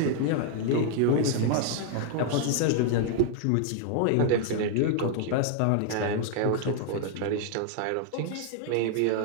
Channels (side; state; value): both; different; correlation 0.00